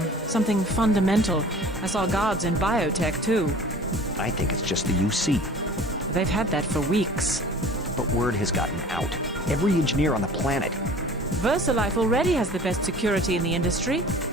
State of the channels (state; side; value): normal; both; correlation 0.44